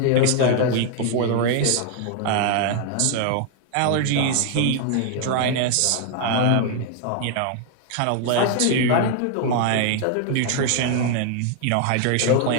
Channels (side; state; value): both; different; correlation 0.00